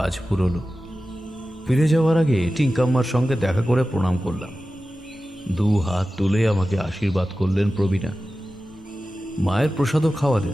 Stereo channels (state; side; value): normal; both; correlation 0.94